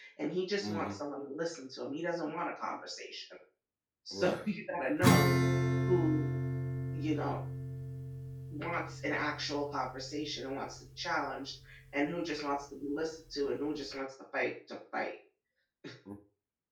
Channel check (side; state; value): both; identical; correlation 1.00